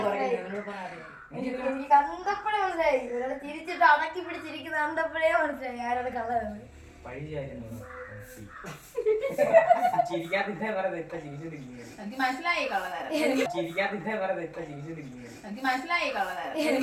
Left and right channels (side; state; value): both; identical; correlation 1.00